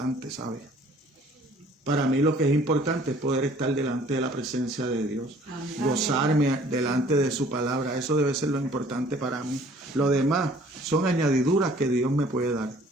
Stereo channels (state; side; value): normal; both; correlation 0.55